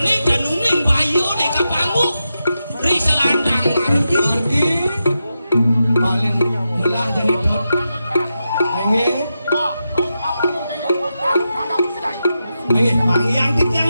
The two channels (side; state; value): both; inverted; correlation -0.89